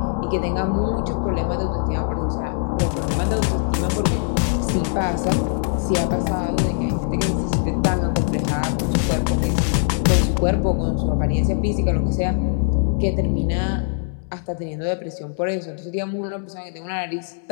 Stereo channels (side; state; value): right; silent; digital silence